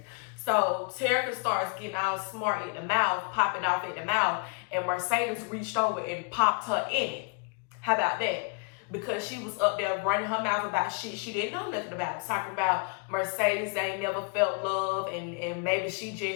So Terica starts getting all smart at the mouth, popping off at the mouth, and Mercedes reached over and popped her in it. How about that? Because she was up there running her mouth about shit she didn't know nothing about. Talking about Mercedes ain't never felt love, and maybe she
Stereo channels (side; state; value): right; quieter; 35.8 dB